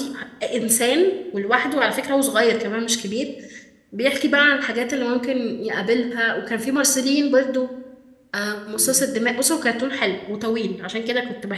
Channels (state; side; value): identical; both; correlation 1.00